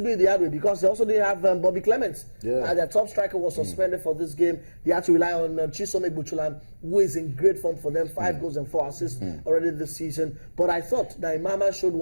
do it the hard way, because they also didn't have Bobby Clements. Their top striker was suspended for this game. They had to rely on Chisom Egbuchulam, who is in great form for them, 5 goals and 4 assists already this season. But I thought that Imama showed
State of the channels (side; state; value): both; inverted; correlation -1.00